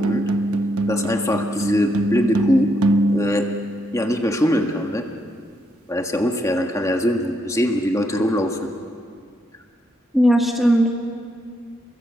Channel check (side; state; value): both; normal; correlation 0.78